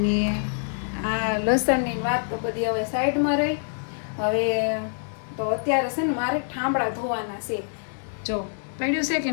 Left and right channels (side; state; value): right; silent; 61 dB below the other